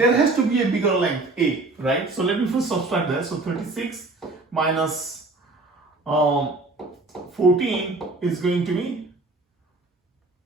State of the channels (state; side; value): quieter; left; 3.2 dB